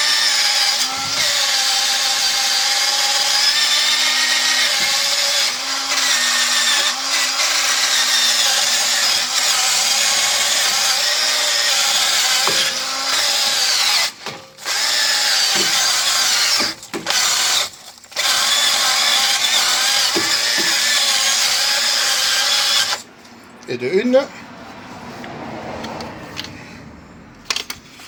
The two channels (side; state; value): both; identical; correlation 1.00